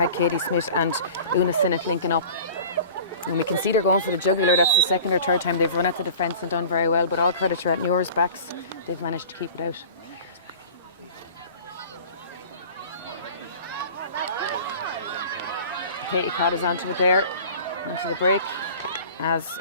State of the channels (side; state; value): both; inverted; correlation -0.42